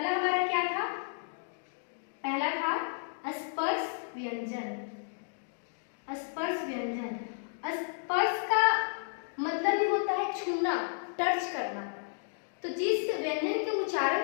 हमारा क्या था? पहला था स्पर्श व्यंजन। स्पर्श व्यंजन, स्पर्श का मतलब ही होता है छूना, टच करना। तो जिस व्यंजन के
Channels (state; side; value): silent; right; digital silence